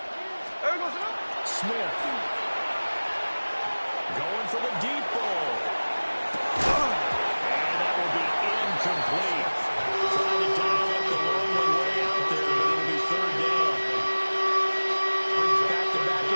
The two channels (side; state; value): both; inverted; correlation -1.00